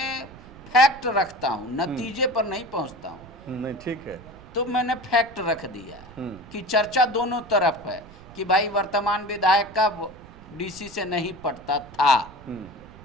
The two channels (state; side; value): noise; right; rumble, 19 dB below the sound